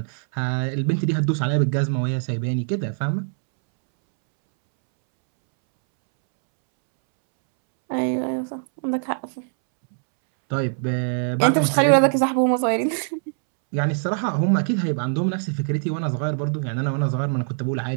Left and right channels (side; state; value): left; silent; 64 dB below the other